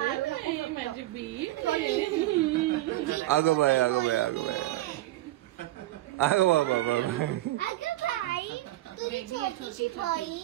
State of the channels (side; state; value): left; quieter; 16.4 dB